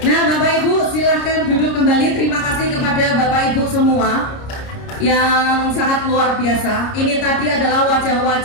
Bapak Ibu silahkan duduk kembali. Terima kasih kepada Bapak Ibu semua yang sangat luar biasa. Ini tadi adalah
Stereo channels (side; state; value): right; late; 29 ms